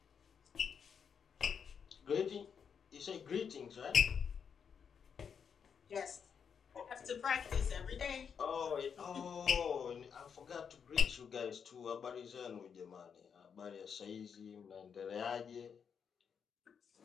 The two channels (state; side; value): quieter; right; 6.9 dB